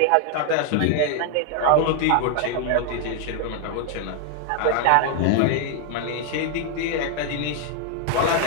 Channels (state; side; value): different; both; correlation 0.00